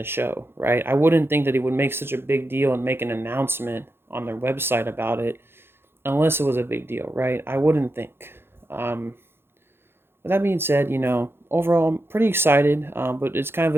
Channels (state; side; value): late; left; 0.11 ms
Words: show, right? I wouldn't think that they would make such a big deal and make an announcement on their website about it unless it was a big deal, right? I wouldn't think. Um, but that being said, overall, I'm pretty excited, but it's kind of